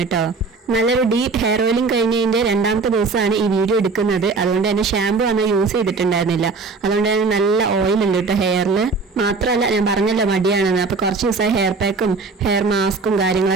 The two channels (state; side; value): quieter; left; 4.1 dB